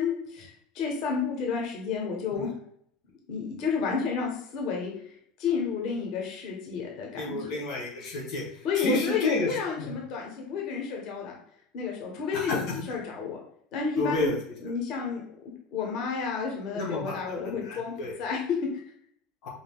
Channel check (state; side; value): quieter; right; 4.4 dB